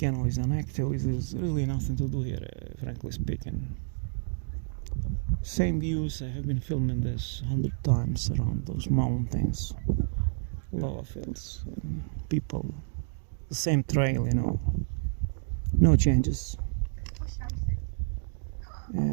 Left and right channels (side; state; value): left; silent; digital silence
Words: is inactive. There's really nothing to do here, frankly speaking. Same views. I have been filming this 100 times around those mountains, lava fields, people, the same trail, no changes.